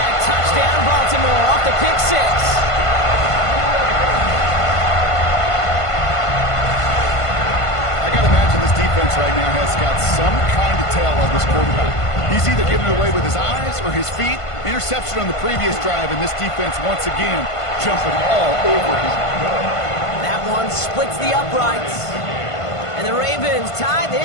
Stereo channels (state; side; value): late; right; 1.5 ms